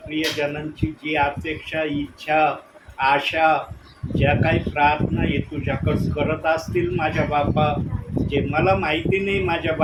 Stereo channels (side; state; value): both; identical; correlation 1.00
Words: प्रियजनांची जी अपेक्षा, इच्छा, आशा, ज्या काही प्रार्थना हे तुझ्याकडं करत असतील माझ्या बापा, जे मला माहिती नाही माझ्या